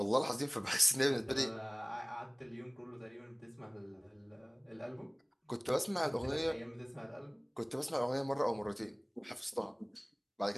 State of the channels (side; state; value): both; identical; correlation 1.00